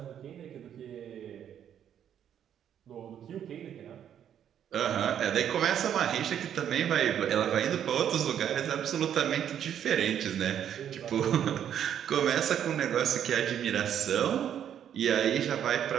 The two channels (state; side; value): quieter; left; 9.5 dB